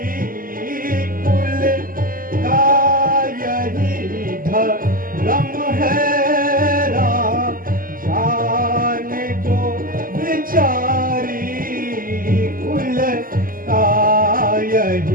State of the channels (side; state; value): left; late; 0.41 ms